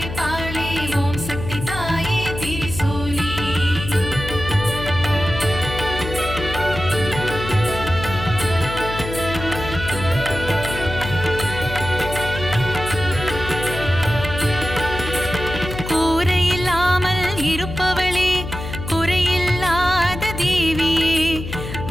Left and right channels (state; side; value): noise; left; hum, 8 dB below the sound